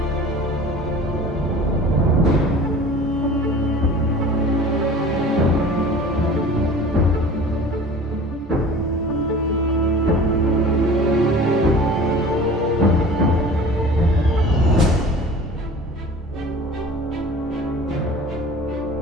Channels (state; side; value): normal; both; correlation 0.42